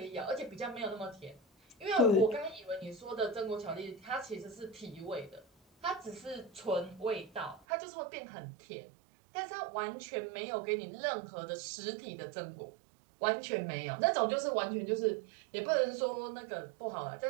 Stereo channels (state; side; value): drops out; left; at 7.6 s